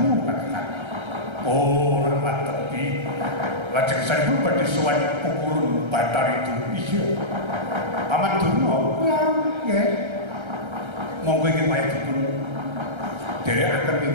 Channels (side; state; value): left; late; 1.3 ms